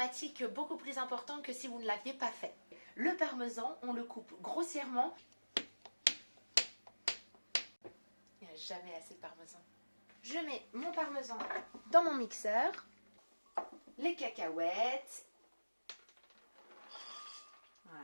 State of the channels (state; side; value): inverted; both; correlation -1.00